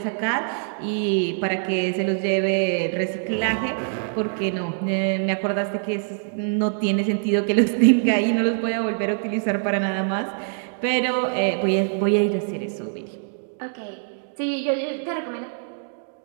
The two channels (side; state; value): left; silent; digital silence